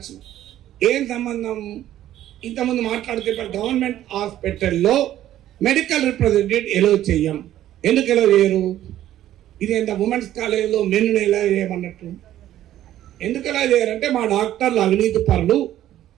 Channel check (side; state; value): left; quieter; 12.7 dB